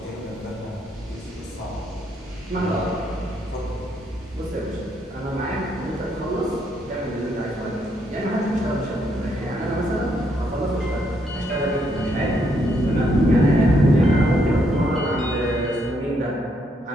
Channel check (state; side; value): normal; both; correlation 0.74